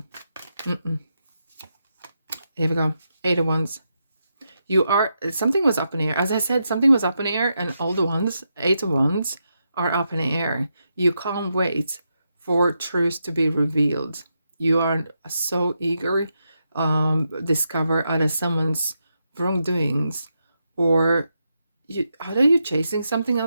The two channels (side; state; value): both; inverted; correlation -0.84